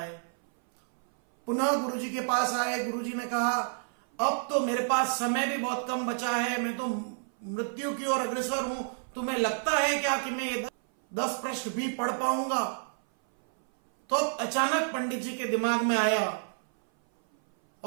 पुनः गुरुजी के पास आए। गुरुजी ने कहा, अब तो मेरे पास समय भी बहुत कम बचा है, मैं तो मृत्यु की ओर अग्रसर हूं, तुम्हें लगता है क्या कि मैं ये 10 पृष्ठ भी पढ़ पाऊंगा? तो अचानक पंडित जी के दिमाग में आया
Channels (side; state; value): left; silent; 56 dB below the other